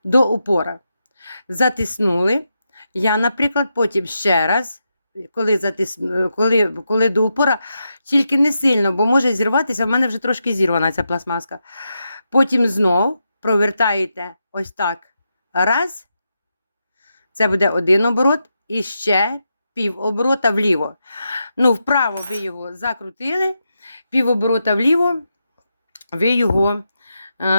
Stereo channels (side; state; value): both; inverted; correlation -0.86